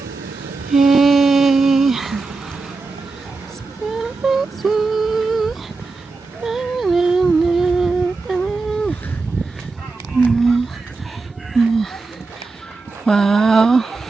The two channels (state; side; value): quieter; left; 3.9 dB